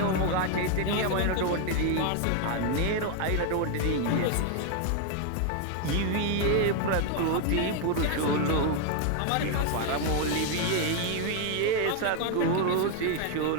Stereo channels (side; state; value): both; different; correlation 0.01